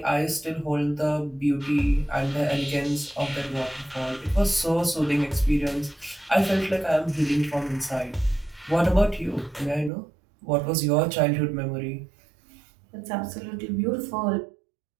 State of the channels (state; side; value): drops out; left; at 9.9 s